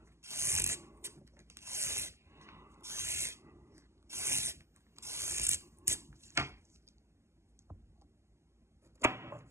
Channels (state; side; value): late; left; 0.13 ms